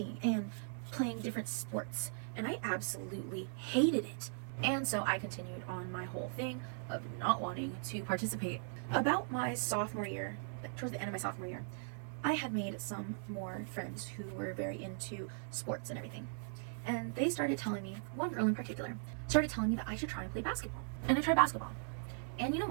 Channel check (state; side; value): silent; left; digital silence